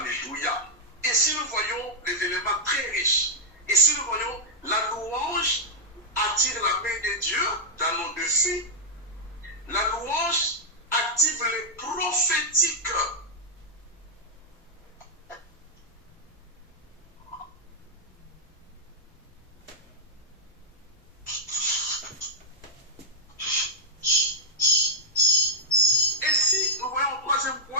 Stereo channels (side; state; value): both; normal; correlation -0.03